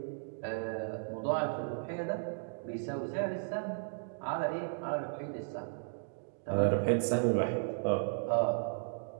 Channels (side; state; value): left; silent; digital silence